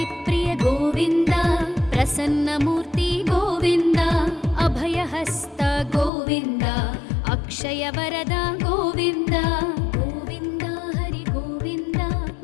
ಪ್ರಿಯ ಗೋವಿಂದ ಪ್ರಸನ್ನ ಮೂರ್ತಿ ಗೋವಿಂದ ಅಭಯಹಸ್ತ ಗೋವಿಂದ ಅಕ್ಷಯ ವರದ ಗೋವಿಂದ ಗೋವಿಂದ ಹರಿ ಗೋವಿಂದ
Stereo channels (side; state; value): right; drops out; at 6.1 s